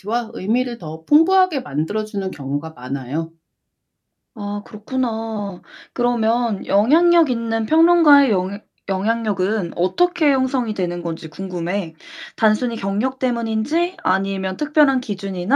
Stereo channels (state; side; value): identical; both; correlation 1.00